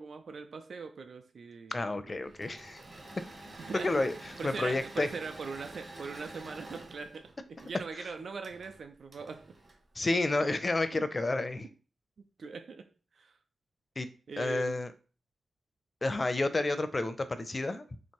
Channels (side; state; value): both; normal; correlation 0.94